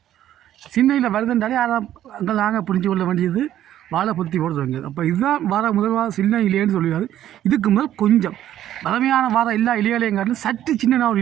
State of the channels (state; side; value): quieter; left; 12.0 dB